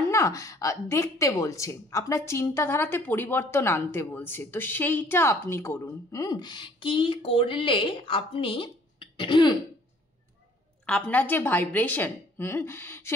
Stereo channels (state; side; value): normal; both; correlation 0.57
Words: না দেখতে বলছে, আপনার চিন্তাধারাতে পরিবর্তন আনতে বলছে। তো সেইটা আপনি করুন। কি করলে আপনি আপনার যে ভাইব্রেশন,